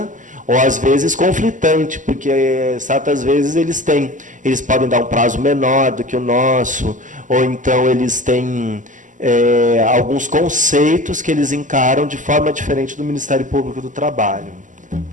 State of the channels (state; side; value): late; left; 0.37 ms